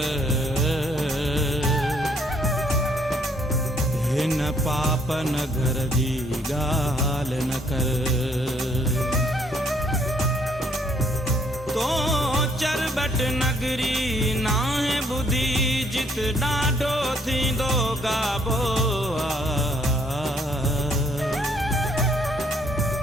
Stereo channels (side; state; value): both; normal; correlation 0.67